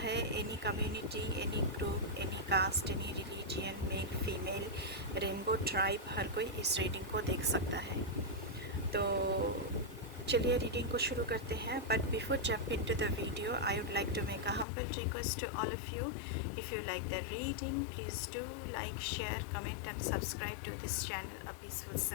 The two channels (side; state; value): right; drops out; at 14.7 s